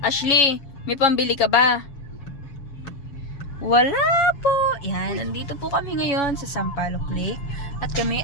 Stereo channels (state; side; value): late; right; 7.1 ms